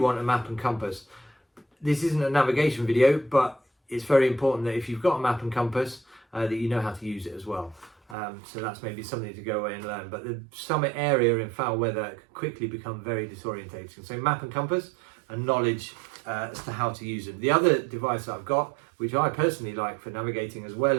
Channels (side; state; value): left; drops out; at 8.2 s